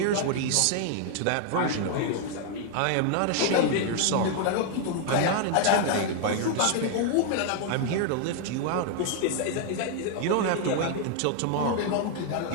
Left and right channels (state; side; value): different; both; correlation 0.00